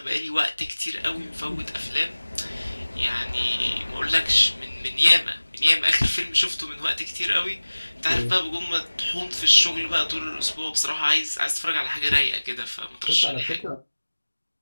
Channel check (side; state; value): both; inverted; correlation -1.00